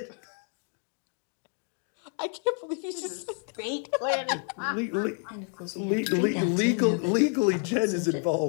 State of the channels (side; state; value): right; quieter; 39.3 dB